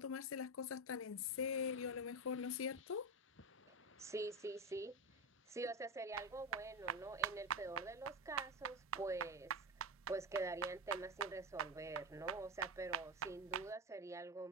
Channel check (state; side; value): normal; both; correlation 0.17